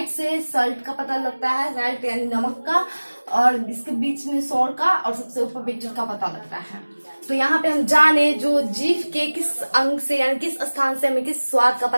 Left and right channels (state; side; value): inverted; both; correlation -1.00